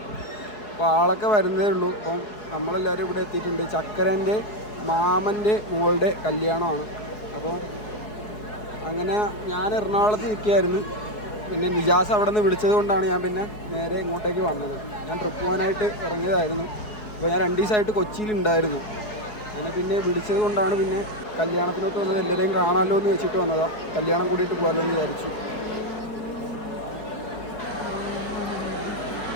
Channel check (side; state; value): right; late; 4.7 ms